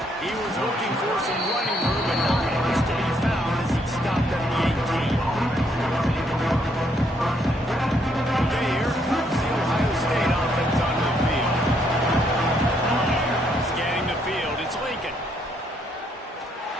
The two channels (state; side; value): normal; both; correlation 0.72